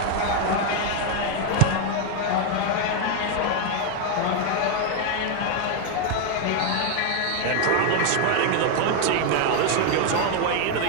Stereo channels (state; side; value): different; both; correlation 0.01